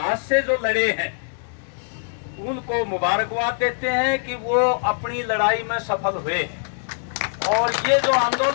से जो लड़े हैं, उनको मुबारकबाद देते हैं कि वो अपनी लड़ाई में सफल हुए हैं। और ये जो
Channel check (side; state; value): right; silent; digital silence